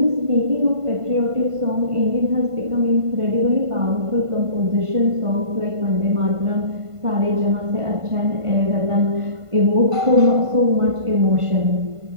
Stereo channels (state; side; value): late; left; 1.5 ms